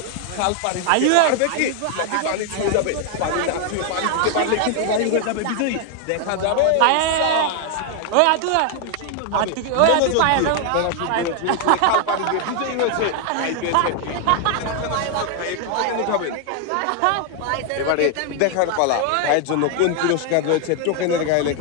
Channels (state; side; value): different; both; correlation 0.00